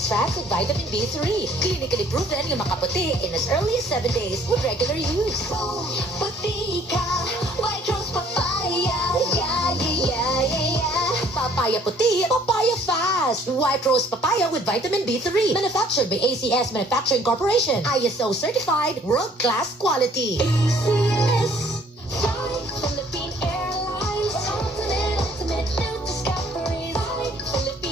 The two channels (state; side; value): normal; both; correlation 0.59